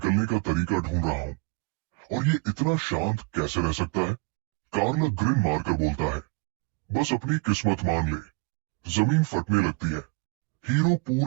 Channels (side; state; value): left; quieter; 29.7 dB